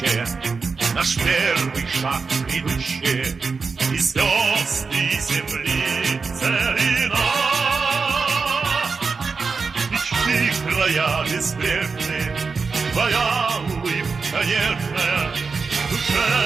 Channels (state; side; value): quieter; left; 4.8 dB